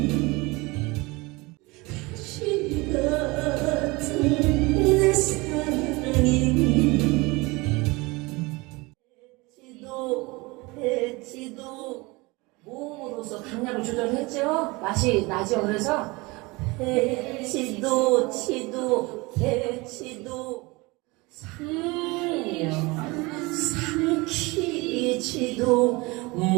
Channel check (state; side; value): quieter; left; 24.2 dB